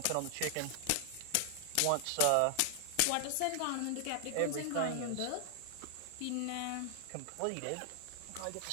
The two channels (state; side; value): different; both; correlation 0.00